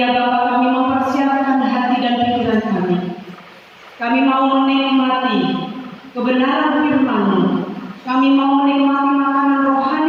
ya Bapa, kami mempersiapkan hati dan pikiran kami. Kami mau menikmati kebenaran firman-Mu. Kami mau menikmati makanan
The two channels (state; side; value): identical; both; correlation 1.00